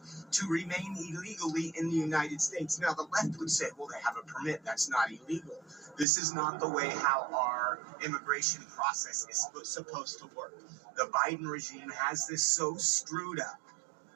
to remain illegally in the United States. Now, the left would say, well, they have a permit. That's not illegal. This is not the way how our immigration process is supposed to work. The Biden regime has this so screwed up.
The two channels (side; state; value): left; drops out; at 6.1 s